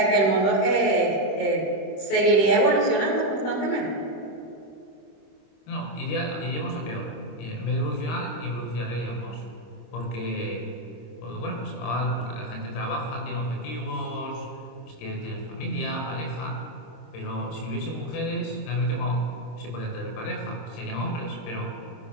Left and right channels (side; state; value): right; late; 26 ms